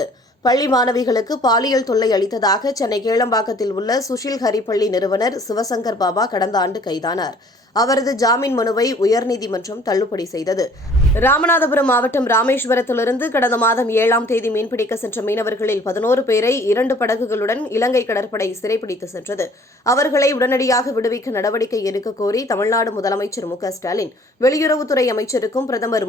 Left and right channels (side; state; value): both; normal; correlation 0.55